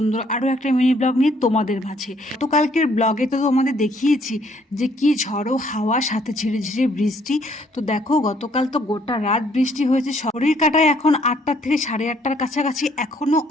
আরও একটা মিনি ব্লগ নিয়ে তোমাদের মাঝে। গতকালকের ব্লগে তো তোমাদের দেখিয়েছি যে কি ঝড়ো হাওয়া, সাথে ঝিরে ঝিরে বৃষ্টি। তো দেখো, গতকাল তো গোটা রাত বৃষ্টি হয়েছে। শরীর কাটায় এখন 8টা থেকে 8:30টার কাছাকাছি এখনও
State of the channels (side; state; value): both; normal; correlation 0.65